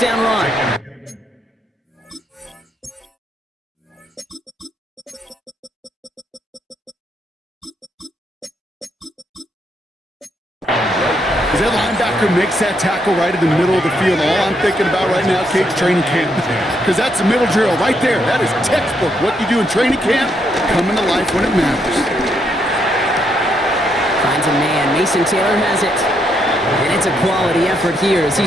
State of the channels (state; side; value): normal; both; correlation 0.76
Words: run. As that linebacker makes that tackle right in the middle of the field, all I'm thinking about right now, Kate's training camp. Because that's a middle drill right there. That is textbook. What you do in training camp, coming to life when it matters. Finds a man. Mason Taylor has it. And it's a quality effort here as